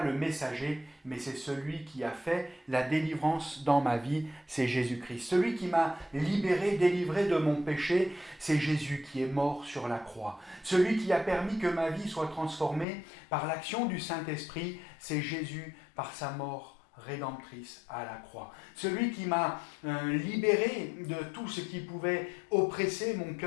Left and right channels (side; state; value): right; drops out; at 12.9 s